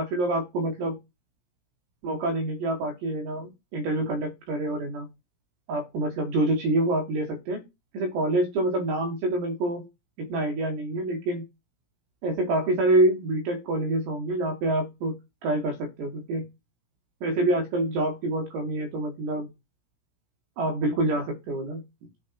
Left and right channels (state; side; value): late; left; 17 ms